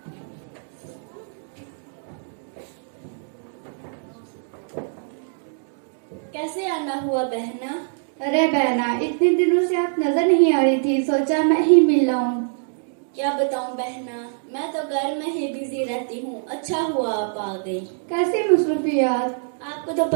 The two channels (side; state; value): left; silent; digital silence